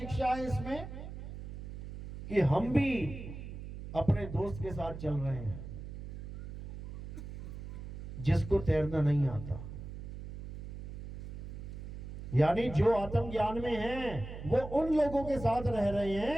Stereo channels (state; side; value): noise; right; hum, 9 dB below the sound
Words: है इसमें कि हम भी अपने दोस्त के साथ चल रहे हैं जिसको तैरना नहीं आता। यानी जो आत्मज्ञान में हैं वो उन लोगों के साथ रह रहे